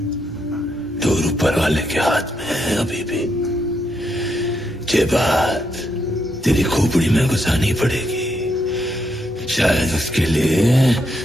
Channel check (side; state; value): both; normal; correlation 0.79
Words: दूर ऊपर वाले के हाथ में है अभी भी। ये बात तेरी खोपड़ी में घुसानी पड़ेगी, शायद उसके लिए